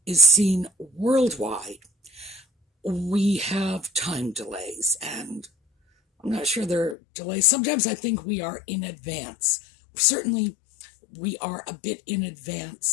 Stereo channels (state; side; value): drops out; right; at 7.0 s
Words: is seen worldwide, we have time delays, and I'm not sure there are delays. Sometimes I think we are in advance. Certainly, we are a bit in